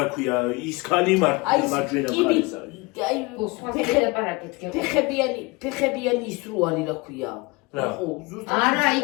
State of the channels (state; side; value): quieter; right; 25.3 dB